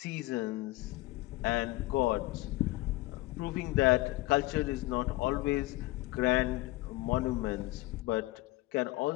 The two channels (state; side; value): quieter; right; 19.5 dB